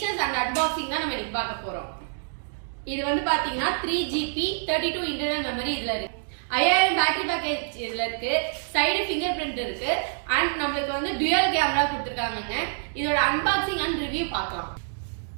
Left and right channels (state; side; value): silent; left; digital silence